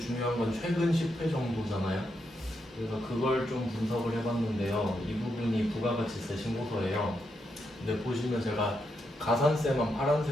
중요한 건 최근 10회 정도잖아요. 그래서 그걸 좀 분석을 해봤는데요. 이 부분이 부가가치세 신고서예요. 근데 보시면 제가 가산세만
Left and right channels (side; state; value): both; normal; correlation 0.82